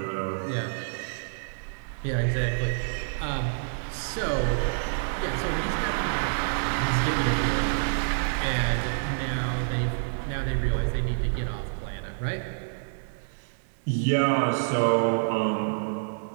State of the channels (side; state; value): left; silent; 58 dB below the other